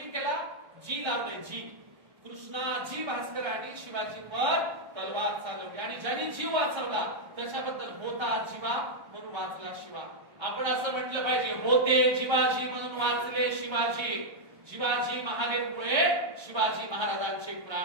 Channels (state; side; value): late; left; 1.3 ms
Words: केला? जी लावले, जी. कृष्णाजी भास्करांनी शिवाजींवर तलवार चालवली आणि ज्यांनी जीव वाचवला त्याच्याबद्दल होता जीवा म्हणून वाचला शिवा. आपण असं म्हटलं पाहिजे, होते जिवाजी म्हणून वाचले शिवाजी. शिवाजी महादेवमुळे शिवाजी महाराजांचे